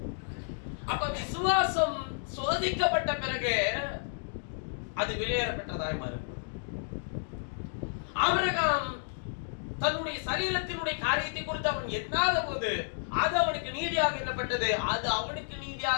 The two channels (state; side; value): silent; right; digital silence